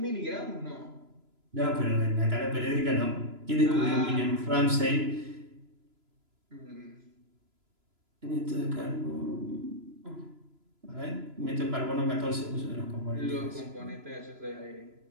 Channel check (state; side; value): late; left; 3.0 ms